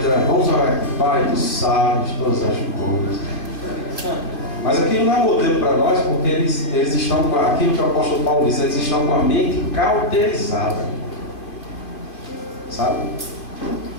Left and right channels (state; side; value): late; right; 2.4 ms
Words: vamos orar aqui. Pai, tu sabes todas as coisas. Mas aquilo não é modelo para nós, porque eles estão com aquilo que o apóstolo Paulo diz, eles estão com a mente cauterizada. Sabe?